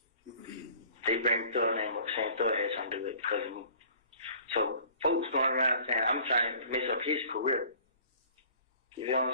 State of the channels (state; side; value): inverted; both; correlation -0.50